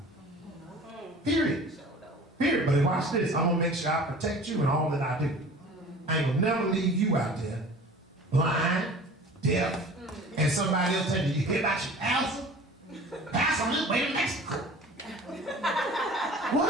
Period. Period. But watch this. I'm going to make sure I protect you in all that I do. I ain't going to never leave you out there blind, deaf, and somebody else telling you, you hear about your pastor? Pastor on his way to Mexico.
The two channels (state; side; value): normal; both; correlation 0.43